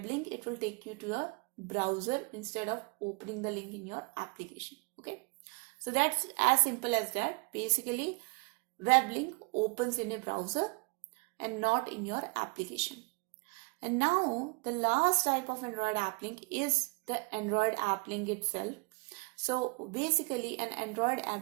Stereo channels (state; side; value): quieter; left; 31.9 dB